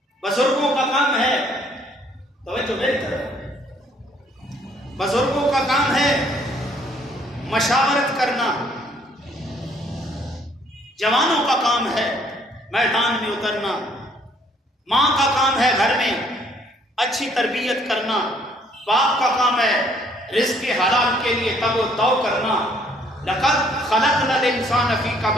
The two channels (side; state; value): both; normal; correlation 0.63